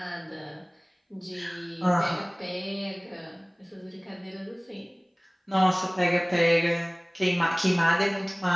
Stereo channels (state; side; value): identical; both; correlation 1.00